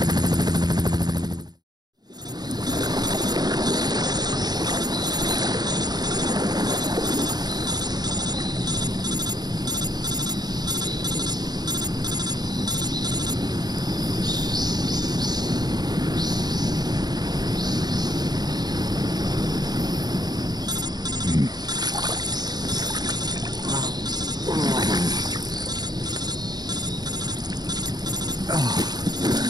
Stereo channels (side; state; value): left; late; 0.20 ms